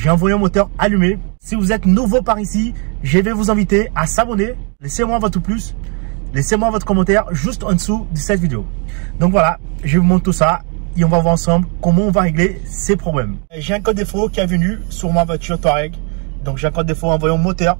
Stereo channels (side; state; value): left; quieter; 37.5 dB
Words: envoyé un moteur allumé. Si vous êtes nouveau par ici, je vais vous inviter à s'abonner. Laissez-moi votre pouce, laissez-moi votre commentaire juste en dessous de cette vidéo. Donc voilà, je vous montre tout ça et on va voir ensemble comment on va régler ces problèmes. J'ai un code défaut qui est venu sur ma voiture Touareg. Donc j'ai un code défaut en voyant moteur